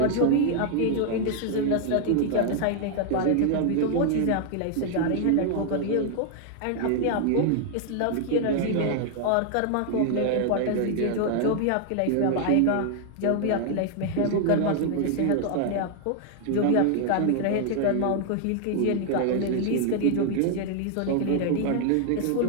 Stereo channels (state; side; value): different; both; correlation 0.00